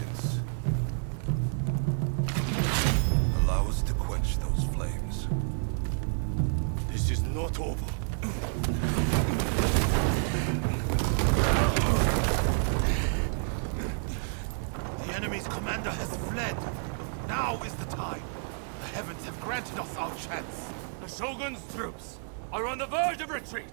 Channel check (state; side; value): silent; left; digital silence